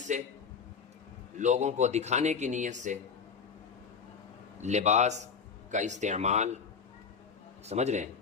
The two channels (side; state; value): right; quieter; 6.1 dB